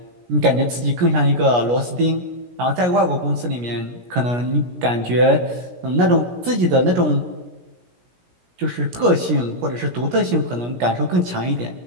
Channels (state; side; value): late; left; 17 ms